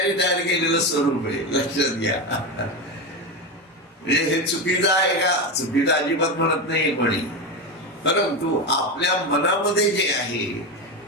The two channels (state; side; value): normal; both; correlation 0.16